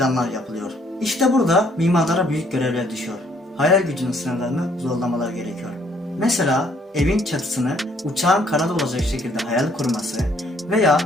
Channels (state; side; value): normal; both; correlation 0.64